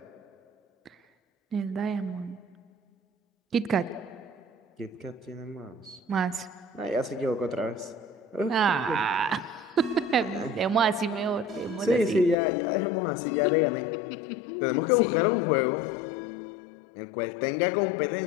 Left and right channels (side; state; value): right; drops out; at 12.4 s